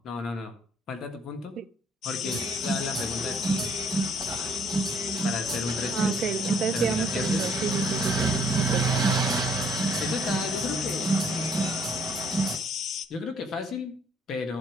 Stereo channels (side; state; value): both; normal; correlation 0.63